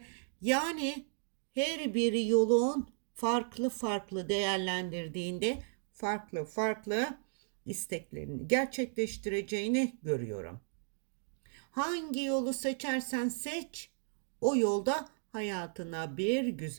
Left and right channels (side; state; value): left; silent; digital silence